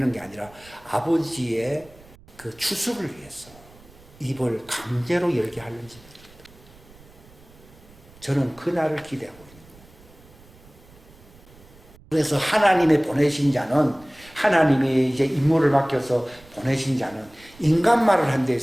게 아니라 아버지의 그 추수를 위해서 입을 강제로 열게 하는지. 저는 그날을 기대하고 있는 거예요. 그래서 하나님의 보내신 자는, 하나님이 이제 임무를 맡겨서 보내신 자는 인간 말을 한다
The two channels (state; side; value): noise; right; rumble, 24 dB below the sound